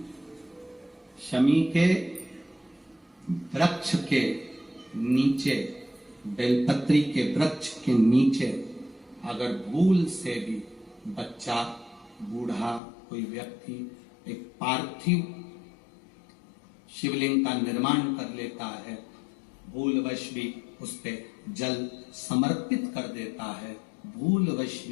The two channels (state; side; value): drops out; right; at 12.8 s